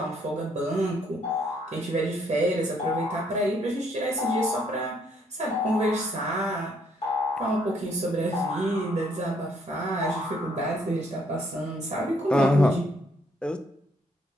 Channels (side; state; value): both; normal; correlation 0.68